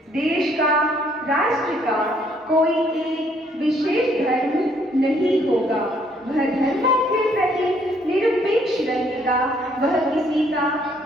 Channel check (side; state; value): both; normal; correlation 0.66